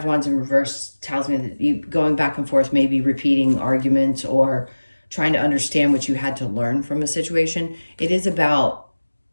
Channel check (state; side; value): inverted; both; correlation -1.00